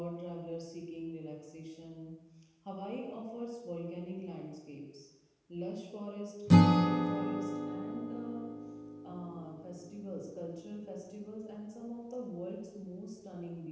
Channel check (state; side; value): identical; both; correlation 1.00